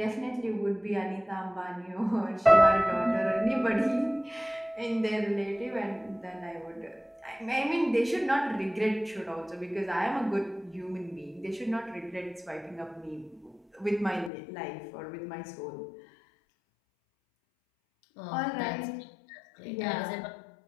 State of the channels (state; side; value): drops out; right; at 14.3 s